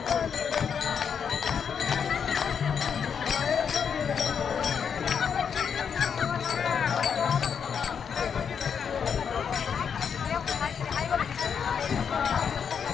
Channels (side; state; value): right; quieter; 7.1 dB